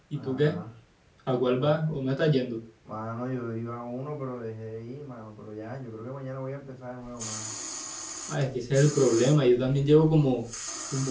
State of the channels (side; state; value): both; identical; correlation 1.00